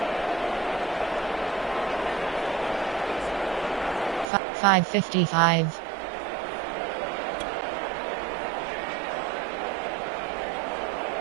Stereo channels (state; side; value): drops out; left; at 4.2 s